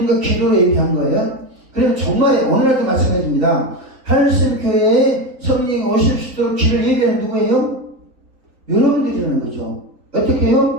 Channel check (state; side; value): late; left; 3.9 ms